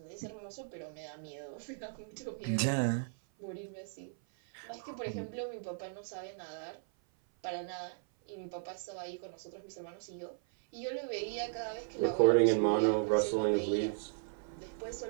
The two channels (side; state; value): left; silent; 54 dB below the other